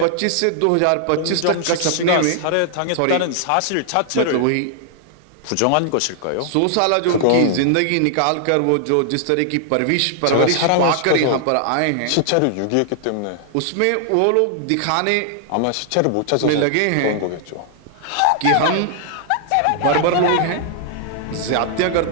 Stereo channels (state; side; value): different; both; correlation 0.00